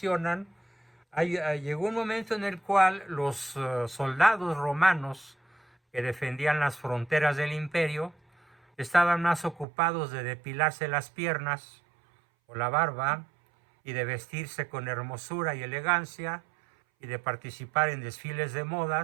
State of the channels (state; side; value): drops out; left; at 9.7 s